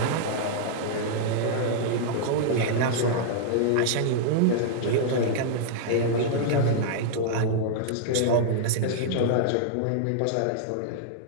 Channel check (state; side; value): different; both; correlation -0.01